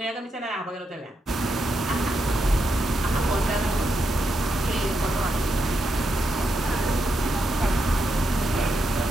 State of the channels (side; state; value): both; normal; correlation 0.83